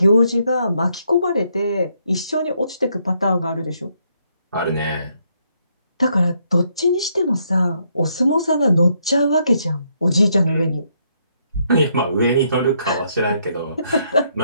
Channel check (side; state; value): both; inverted; correlation -0.74